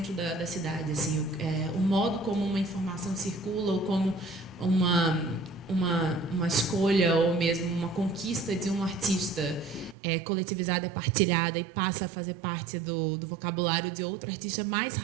da cidade, assim, o modo como uma informação circula, ou como uma escolha ou mesmo uma conquista de um artista coletivizada, partilhada e passa a fazer parte do vocabulário de outro artista mais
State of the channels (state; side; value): drops out; left; at 10.0 s